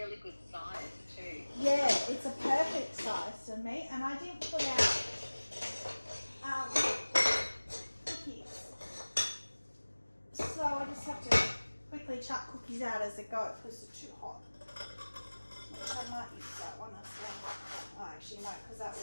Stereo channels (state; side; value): inverted; both; correlation -1.00